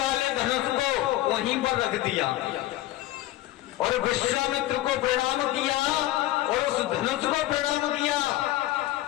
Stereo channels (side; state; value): right; quieter; 15.7 dB